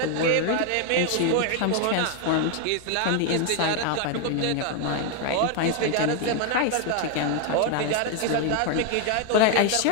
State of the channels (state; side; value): different; both; correlation 0.01